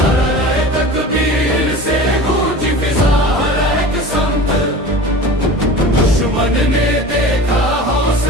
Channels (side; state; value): both; normal; correlation 0.36